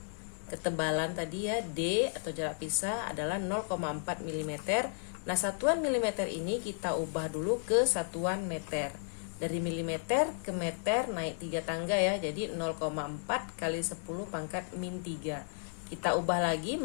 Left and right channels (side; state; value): right; silent; 55 dB below the other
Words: Ketebalan tadi ya, D atau jarak pisah adalah 0,4 mm. Nah, satuan milimeter ini kita ubah dulu ke satuan meter. Dari milimeter ke meter naik 3 tangga ya, jadi 0,4 kali 10 pangkat min 3. Kita ubah lagi